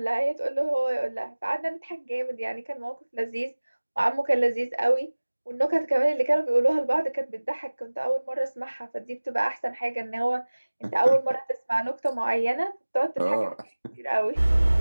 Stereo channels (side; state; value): both; inverted; correlation -1.00